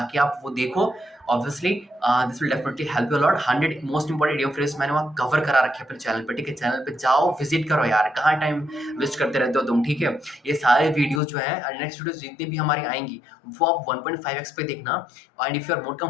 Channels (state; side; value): drops out; right; at 11.2 s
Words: आप वो देखो, obviously this will definitely help you a lot. 100 most important idiom phrase मैंने वहाँ कवर करा रखे हैं अपने चैनल पे, ठीक है? चैनल पे जाओ, विजिट करो यार, कहाँ टाइम वेस्ट करते रहते हो तुम, ठीक है? ये सारे वीडियोज जो है, नेक्स्ट वीडियोज जितनी भी हमारी आएंगी वो आप 1.5x पे देखना, and if you are more